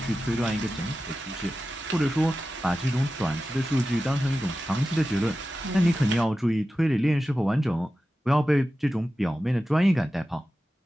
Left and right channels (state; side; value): normal; both; correlation 0.93